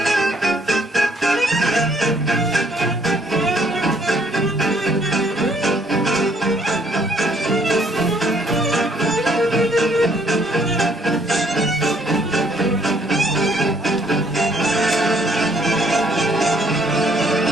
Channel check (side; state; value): both; normal; correlation 0.65